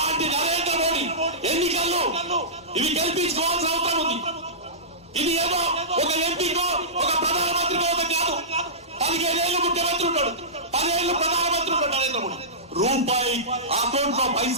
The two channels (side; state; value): both; normal; correlation -0.18